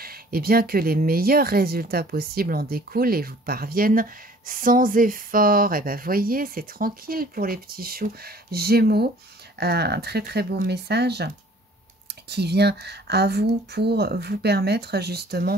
eh bien, que les meilleurs résultats possibles en découlent et vous parviennent sans effort. Et bien, voyez, c'est tranquille pour les petits choux Gémeaux. Un très très beau message qui vient à vous pour vous permettre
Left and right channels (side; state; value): both; normal; correlation 0.53